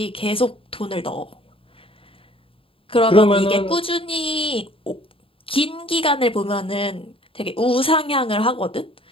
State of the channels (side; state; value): right; late; 0.26 ms